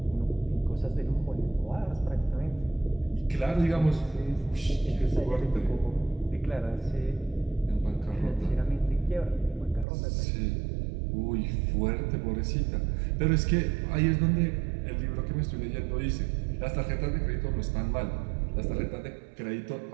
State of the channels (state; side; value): drops out; left; at 9.9 s